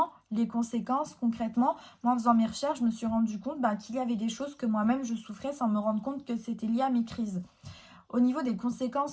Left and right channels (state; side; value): identical; both; correlation 1.00